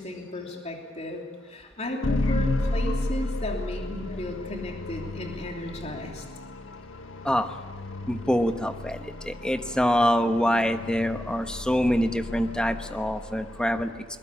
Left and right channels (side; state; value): both; normal; correlation 0.86